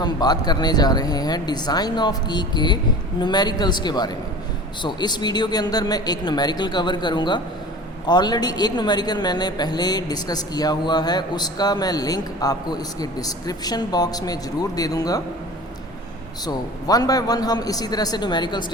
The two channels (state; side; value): normal; both; correlation 0.39